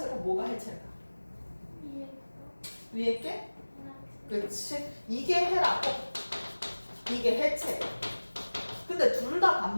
뭐가 해체일까? 위에 게? 그렇지. 이게 헤라고 이게 해체예요. 근데 둘 다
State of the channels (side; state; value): both; inverted; correlation -1.00